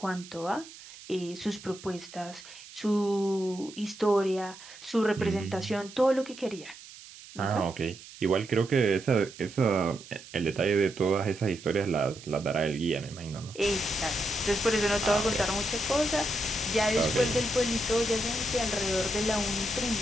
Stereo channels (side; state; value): right; noise; hiss, 18 dB below the sound